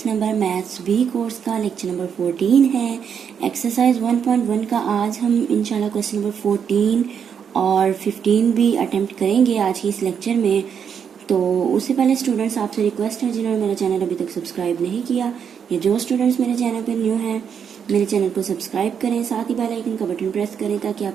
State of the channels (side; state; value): left; quieter; 7.5 dB